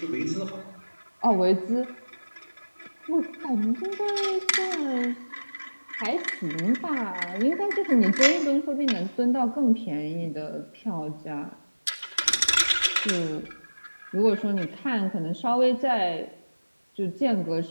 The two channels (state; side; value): inverted; both; correlation -1.00